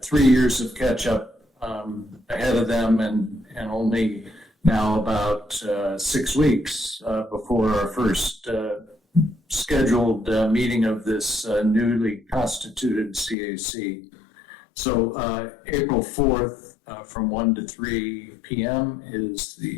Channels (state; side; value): drops out; right; at 13.4 s